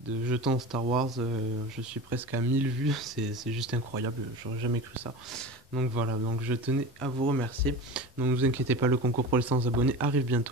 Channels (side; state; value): both; normal; correlation 0.30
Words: jetons Star Wars. Je suis presque à 1000 vues, c'est juste incroyable, j'aurais jamais cru ça. Donc voilà, donc je tenais à vous remercier. Donc ne vous inquiétez pas, le concours pour les 100 abonnés arrive